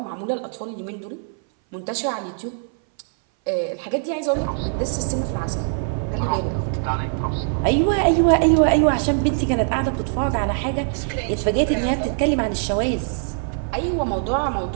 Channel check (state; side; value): silent; left; 61 dB below the other